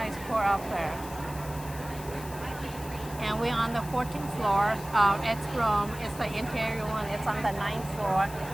court up there. And we're on the 14th floor. It's room. It's the interior one. It's on the 9th floor.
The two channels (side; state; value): left; noise; hiss, 15 dB below the sound